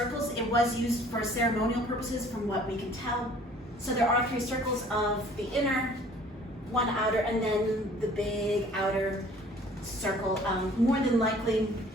It was used for ceremonial purposes from what we can tell. So there are 3 circles of the inner, 1 outer, and then the big outer circle. More than likely,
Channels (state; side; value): normal; both; correlation 0.53